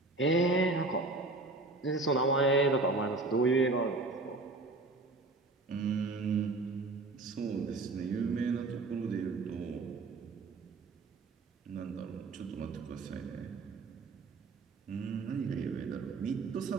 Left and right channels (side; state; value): left; quieter; 3.3 dB